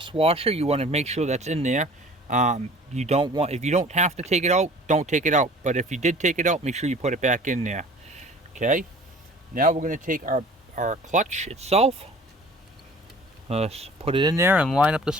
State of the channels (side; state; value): both; normal; correlation 0.47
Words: washer. You want to make sure that's in there. If you don't have to take it out, don't take it out. But if you did take it out, make sure you put it back in there. Okay? Now we're going to take our clutch itself. Let's put it in there and line up the